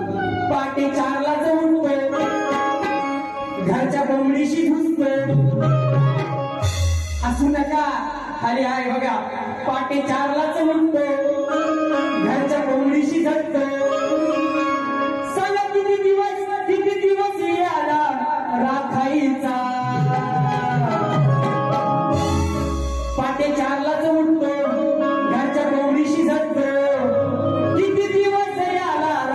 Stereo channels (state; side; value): identical; both; correlation 1.00